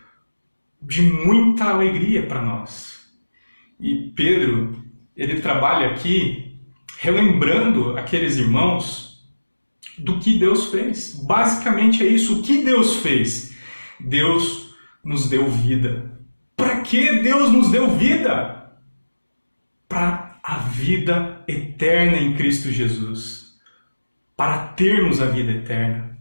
de muita alegria para nós. E Pedro, ele trabalha aqui relembrando aqueles irmãos do que Deus fez. Basicamente é isso. O que Deus fez? Deus nos deu vida. Para que Deus nos deu vida? Para a vida eterna em Cristo Jesus. Para termos a vida eterna.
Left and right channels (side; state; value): both; inverted; correlation -1.00